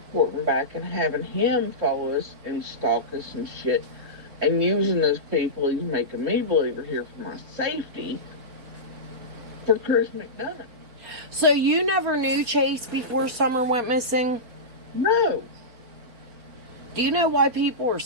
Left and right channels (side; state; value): left; late; 4.0 ms